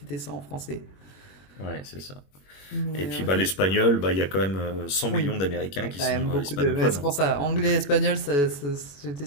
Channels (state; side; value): late; right; 21 ms